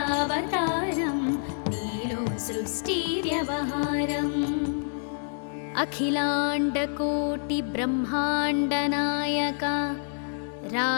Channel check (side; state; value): right; silent; digital silence